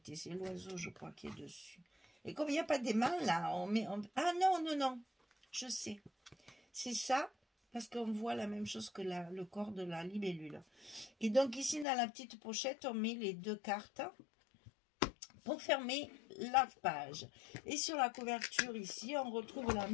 c'est l'oiseau je crois qui est dessus. Et comme il n'y a pas d'aimant là, ah non, je sais, c'est ça, parce qu'on voit la même chose que le corps de la libellule. Et donc ici dans la petite pochette on met les deux cartes pour fermer la page. Et sur la couverture ici, on retrouve la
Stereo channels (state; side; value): drops out; right; at 11.9 s